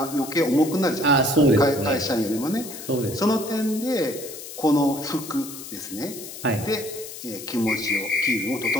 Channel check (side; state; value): left; noise; hiss, 12 dB below the sound